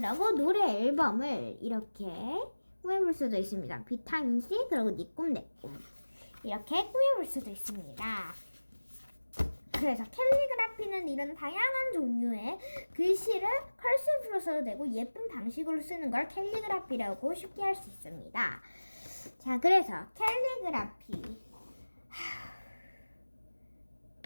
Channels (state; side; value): inverted; both; correlation -1.00